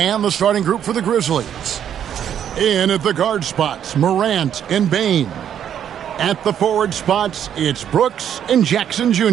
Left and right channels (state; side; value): quieter; left; 9.4 dB